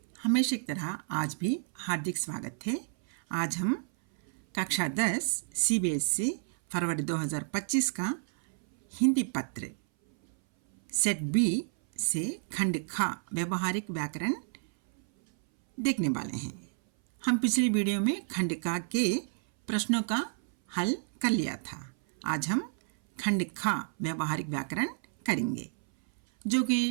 हमेशा की तरह आज भी हार्दिक स्वागत है। आज हम कक्षा 10 CBSE फरवरी 2025 का हिंदी पत्र सेट बी से खंड खा व्यवहारिक व्याकरण देखने वाले हैं। हम पिछली वीडियो में खंड का के प्रश्नों का हल कर लिया था। आज हम खंड खा व्यवहारिक व्याकरण करेंगे। जो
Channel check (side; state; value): left; silent; 58 dB below the other